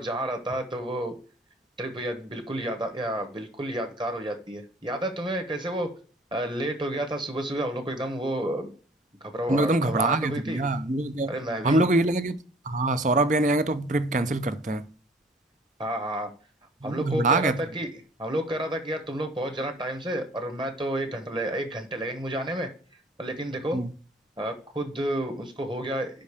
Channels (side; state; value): both; normal; correlation 0.53